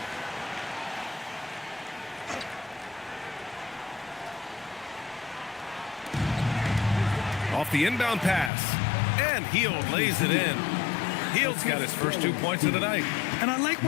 Off the inbound pass. And Hield lays it in. Hield's got his first 2 points of the night. And I like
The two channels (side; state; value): right; drops out; at 8.5 s